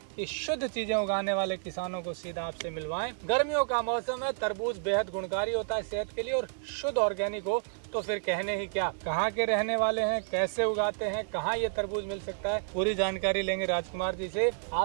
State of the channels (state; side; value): silent; left; digital silence